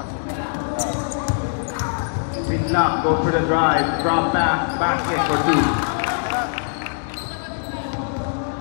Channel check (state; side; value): silent; right; digital silence